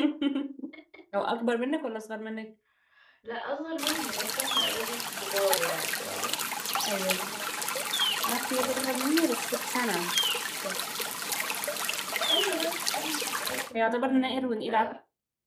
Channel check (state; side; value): identical; both; correlation 1.00